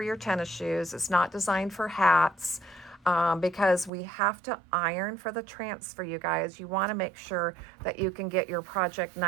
your tennis shoes. It's not designed for hats. Because we have to iron for the transfer, you guys. You want to make sure that you can get your project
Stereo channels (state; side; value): drops out; left; at 3.9 s